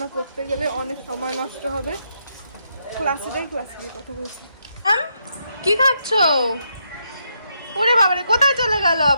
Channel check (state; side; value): inverted; both; correlation -0.79